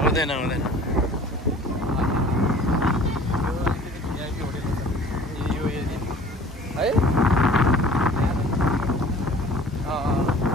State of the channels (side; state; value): both; normal; correlation 0.47